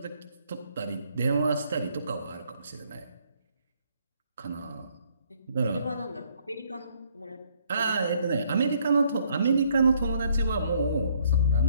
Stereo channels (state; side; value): inverted; both; correlation -0.67